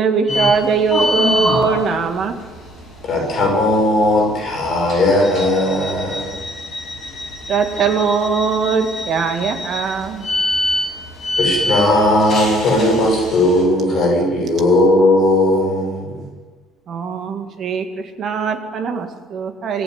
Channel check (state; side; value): normal; both; correlation 0.59